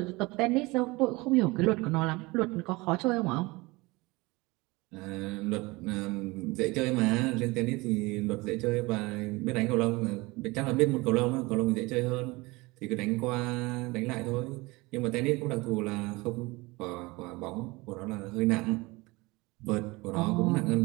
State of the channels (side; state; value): left; quieter; 23.2 dB